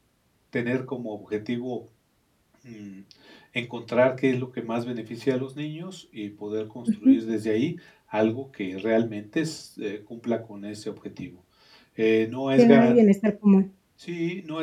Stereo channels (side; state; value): both; identical; correlation 1.00